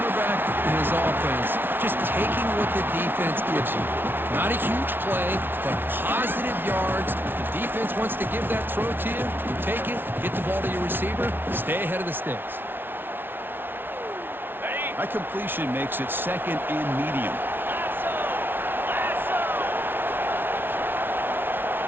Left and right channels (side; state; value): left; late; 0.10 ms